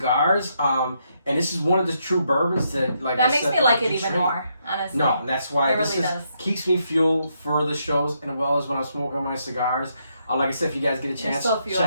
and this is one of the true bourbons that, that makes me like it even more, honestly. No, and that's why does. Keeps me fueled for the shows, and as well as when I'm smoking my cigars. Like I said, if you guys get a chance,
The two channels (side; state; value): both; inverted; correlation -0.77